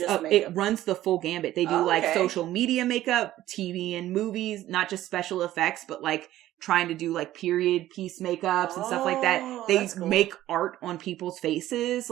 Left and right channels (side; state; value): left; quieter; 14.2 dB